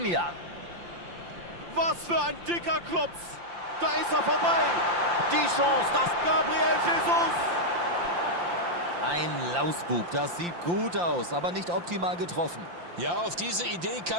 Was für ein dicker Klopf. Da ist er vorbei. Die Chance, das Gabriel Jesus. Ein Lausbub, das sieht gut aus, aber nicht optimal getroffen. Ja, auf diese Idee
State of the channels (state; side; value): late; left; 5.8 ms